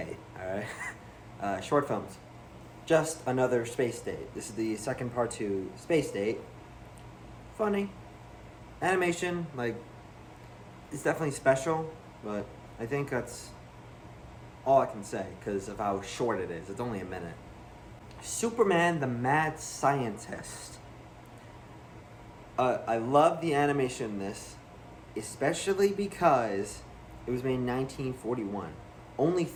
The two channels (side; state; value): both; identical; correlation 1.00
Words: alright? Short films. Just Another Space Date. This is the second part to Space Date. Funny. Animation, like, it's definitely special, but I think that's all I can say because of how short it is. It's only a minute. Superman the Mad Scientist. I love the animation in this, especially because it was made in 1941, only